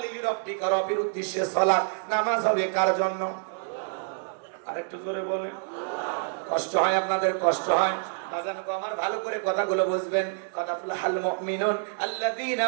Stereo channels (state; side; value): silent; left; digital silence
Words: লিরাব্বিকা, রবের উদ্দেশ্যে সালাত, নামাজ হবে কার জন্য? আরেকটু জোরে বলেন। কষ্ট হয় আপনাদের? কষ্ট হয়? আমার ভালো করে কথাগুলো বুঝবেন। কাদাফুলাল মুমিনুন আল্লাযীনা